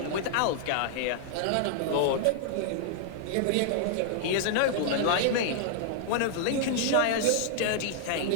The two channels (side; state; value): both; different; correlation -0.01